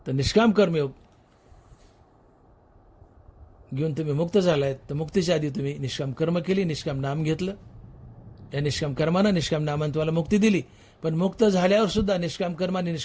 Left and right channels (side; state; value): both; identical; correlation 1.00